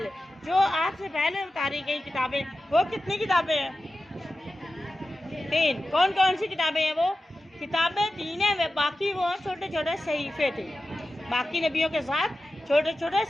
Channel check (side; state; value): both; normal; correlation 0.93